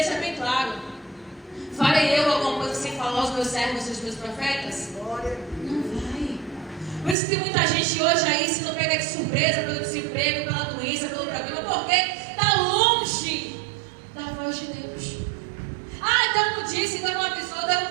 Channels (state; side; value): drops out; left; at 7.2 s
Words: bem claro: farei eu alguma coisa sem falar aos meus servos e aos meus profetas? Não vai. Por isso que tem muita gente hoje aí se não pega de surpresa pelo desemprego, pela doença, pelo problema, porque está longe da voz de Deus. Deus não disse, Deus não avisou, Deus não